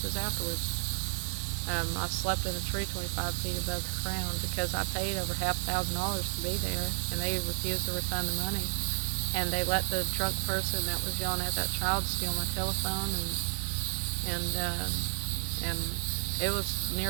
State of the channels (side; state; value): left; silent; 57 dB below the other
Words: afterwards. I slept in a tree 25 feet above the ground because I paid over $5,000 to be there, and they refused to refund the money. And they let the drunk person that was yelling at that child steal my telephone, and it was